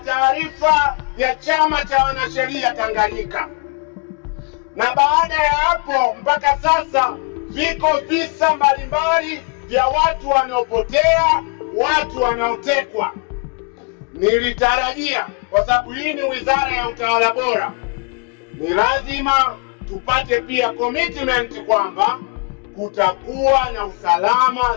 ya Chama cha Wanasheria Tanganyika, na baada ya hapo mpaka sasa viko visa mbalimbali vya watu wanaopotea, watu wanaotekwa. Nilitarajia, kwa sababu hii ni wizara ya utawala bora, ni lazima tupate pia commitment kwamba kutakuwa na usalama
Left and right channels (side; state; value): right; quieter; 34.8 dB